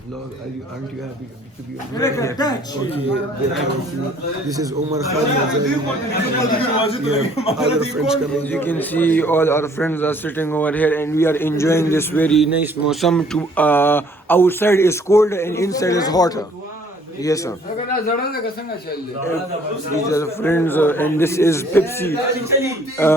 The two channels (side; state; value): both; normal; correlation 0.58